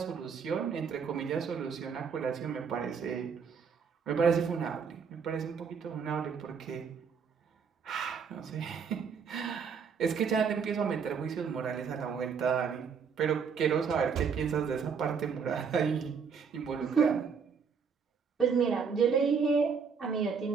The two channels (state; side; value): quieter; left; 6.2 dB